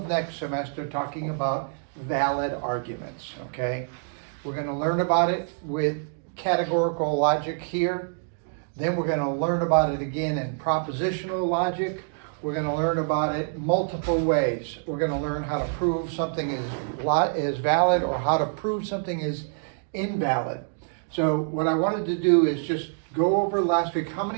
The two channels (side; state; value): left; silent; digital silence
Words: next semester talking about valid arguments, okay? We're gonna learn about it with categorical logic here. Then we're gonna learn about it again in propositional logic. We're gonna learn about it multiple ways. We're gonna learn how to prove something is valid or how to prove something is invalid. So what I wanted to do is just go over last week. How